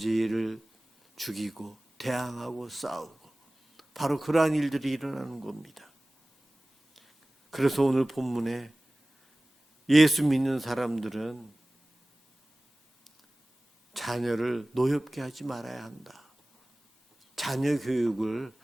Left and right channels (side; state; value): both; normal; correlation 0.98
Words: 죽이고 대항하고 싸우고 바로 그러한 일들이 일어나는 겁니다. 그래서 오늘 본문에 예수 믿는 사람들은 자녀를 노엽게 하지 말아야 한다. 자녀 교육을